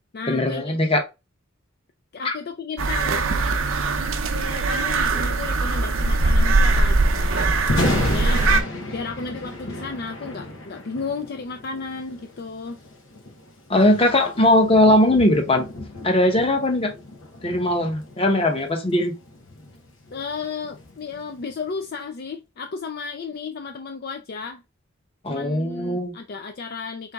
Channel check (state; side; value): normal; both; correlation 0.44